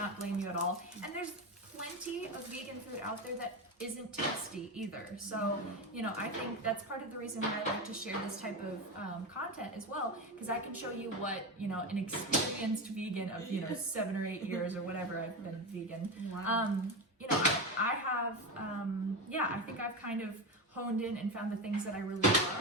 blame you at all. And there's plenty of vegan food out there that isn't tasty either. So, you know, I think that's part of the reason why I like to share this type of content as well, because I can show you what, you know, an experienced vegan of, you know, 7 or 8 years or whatever I've been vegan. Wow. You know, I have, I think I've kind of honed in and found the things that I really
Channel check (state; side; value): normal; both; correlation 0.18